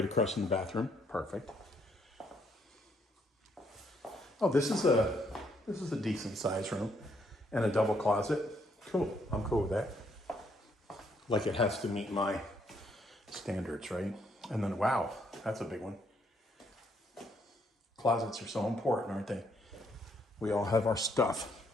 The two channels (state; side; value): normal; both; correlation 0.71